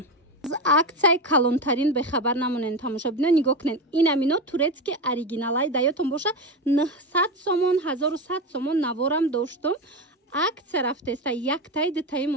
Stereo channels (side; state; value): both; normal; correlation 0.18